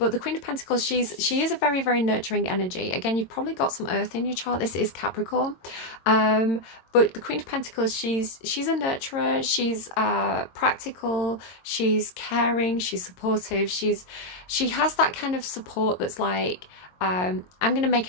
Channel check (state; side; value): late; right; 22 ms